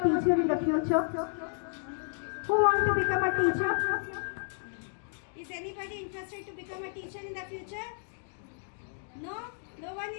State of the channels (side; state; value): right; silent; 57 dB below the other